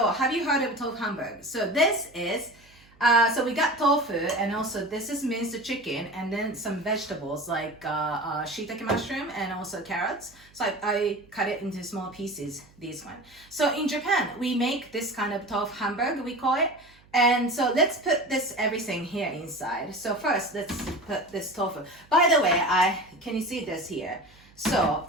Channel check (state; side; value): noise; right; hum, 28 dB below the sound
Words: have you heard of Tofu Hamburg? So this is, so we got tofu and also this is minced chicken and then some vegetables like shiitake mushroom and also carrots. So I cut it into small pieces, this one. So in Japan, we make this kind of Tofu Hamburg, we call it. And so let's put this everything here inside. So first, let's put this tofu. By the way, can you see this here? So